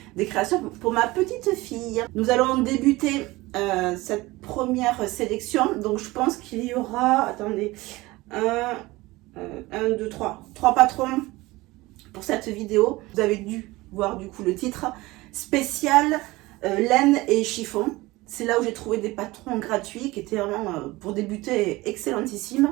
des créations pour ma petite fille. Nous allons débuter cette première sélection, donc je pense qu'il y aura, attendez, trois patrons pour cette vidéo. Vous avez dû voir du coup le titre spécial laine et chiffon. C'est là où j'ai trouvé des patrons gratuits qui étaient vraiment pour débuter excellentissimes.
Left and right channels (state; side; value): quieter; left; 20.4 dB